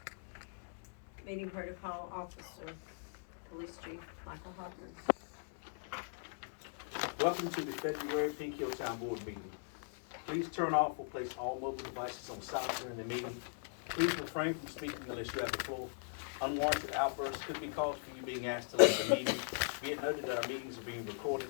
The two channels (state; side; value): silent; right; digital silence